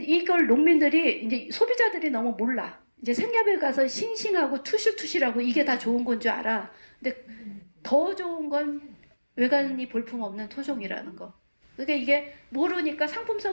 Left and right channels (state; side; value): inverted; both; correlation -1.00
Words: 농민들이, 이제 소비자들이 너무 몰라. 이제 생협에 가서 싱싱하고 투실투실하고 이게 다 좋은 건 줄 알아. 근데 더 좋은 건 외관이 볼품없는 토종이라는 거. 그러니까 이게 모르니까,